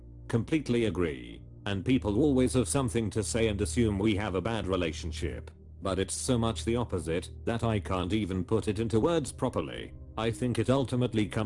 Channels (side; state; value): both; identical; correlation 1.00